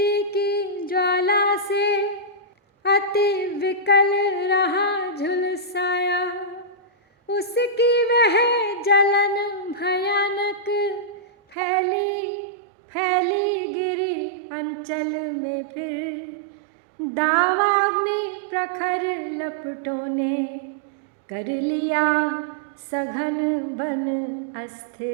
की ज्वाला से अति विकल रहा झुलसाया। उसकी वह जलन भयानक फैली गिरी अंचल में, फिर दावाग्नि प्रखर लपटों ने कर लिया सघन बन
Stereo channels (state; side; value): drops out; left; at 11.6 s